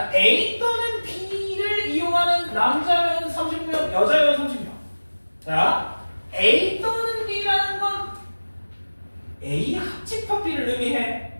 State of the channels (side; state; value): both; inverted; correlation -1.00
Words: A 또는 B를 이용하는 남자면 30명, 여자면 30명. 자, A 또는 B라는 건 A 합집합 B를 의미해.